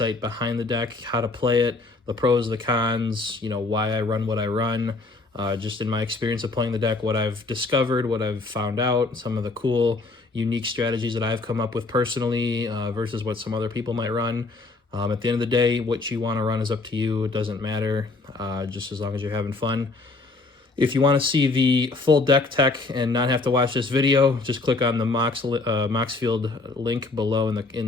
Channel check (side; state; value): right; quieter; 3.5 dB